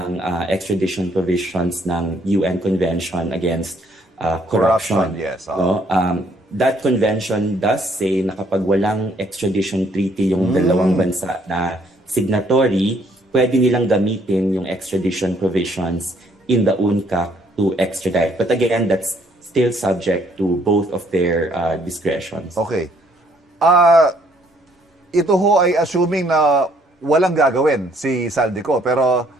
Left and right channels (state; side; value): normal; both; correlation 0.66